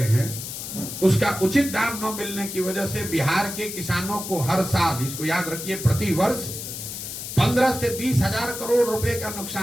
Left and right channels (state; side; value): noise; left; hiss, 8 dB below the sound